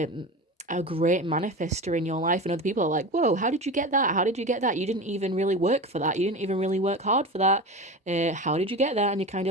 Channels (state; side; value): normal; both; correlation 0.28